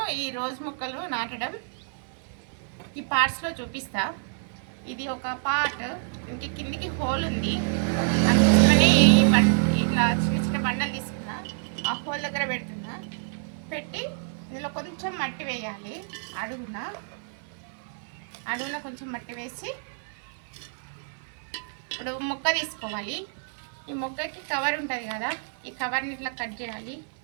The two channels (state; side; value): silent; left; 60 dB below the other